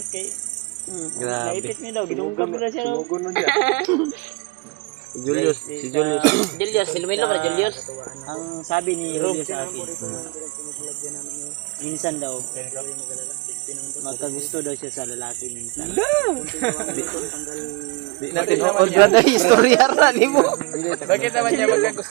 kay. Grabe. Naipit mi daw ginunggam mo na siya daw. Si Julius, si Julius. Julius, silmilo ka Julius. Ang sabi ni Julio sa akin. Minsan daw magkagusto daw siya sa lalaki minsan. Natin o dyan na istorya ra nimo. Bakit naman niya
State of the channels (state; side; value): quieter; left; 26.8 dB